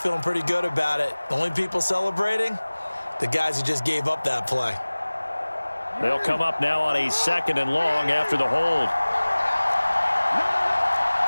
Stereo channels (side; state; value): both; inverted; correlation -1.00